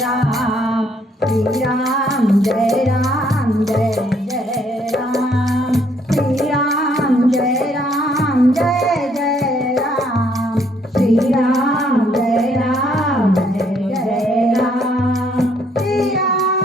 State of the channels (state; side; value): normal; both; correlation 0.67